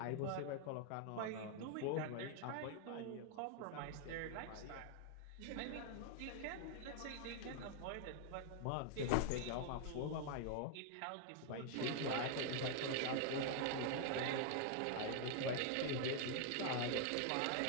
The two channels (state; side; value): different; both; correlation 0.00